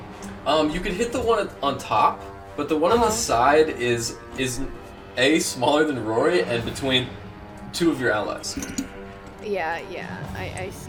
You could hit the one on top, but the one on the side is A, smaller than Rory, and between 2 of your allies. Yeah, I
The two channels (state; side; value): identical; both; correlation 1.00